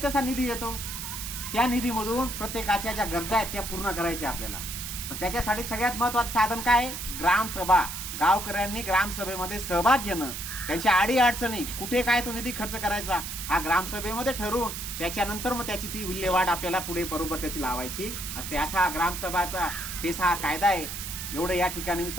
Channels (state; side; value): noise; right; hiss, 7 dB below the sound